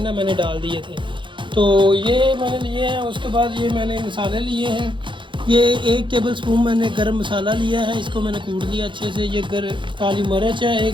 ना मैंने डाल दिए थे। तो ये मैंने लिए हैं। उसके बाद ये मैंने मसाले लिए हैं। ये 1 टेबल स्पून मैंने गरम मसाला लिया है, इसको मैंने कूट लिया अच्छे से। ये काली मिर्च है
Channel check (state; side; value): late; left; 0.23 ms